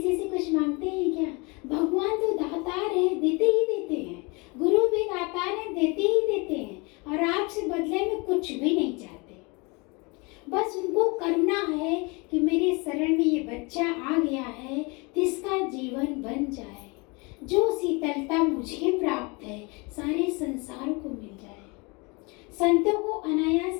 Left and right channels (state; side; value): quieter; right; 28.4 dB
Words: से कुछ मांगते हैं क्या? भगवान तो दातार है, देते ही देते हैं। गुरु भी दातार है, देते ही देते हैं, और आपसे बदले में कुछ भी नहीं चाहते। बस उनको करुणा है कि मेरे शरण में ये बच्चा आ गया है, जिसका जीवन बन जाए। जो शीतलता मुझे प्राप्त है, सारे संसार को मिल जाए। संतों को